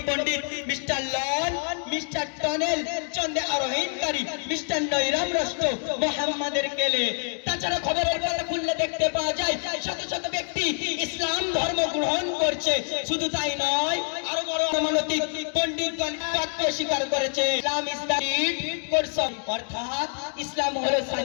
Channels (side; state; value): right; silent; 58 dB below the other